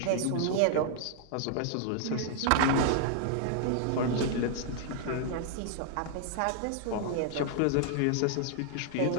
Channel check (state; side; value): different; both; correlation 0.00